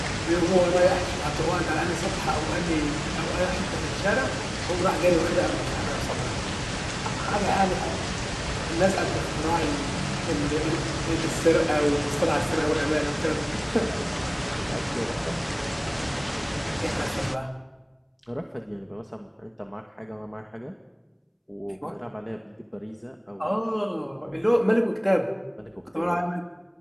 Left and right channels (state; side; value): identical; both; correlation 1.00